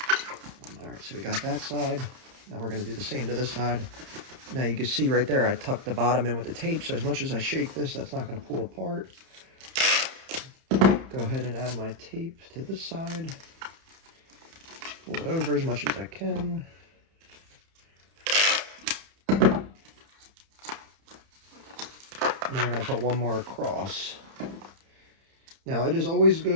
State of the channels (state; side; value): late; left; 30 ms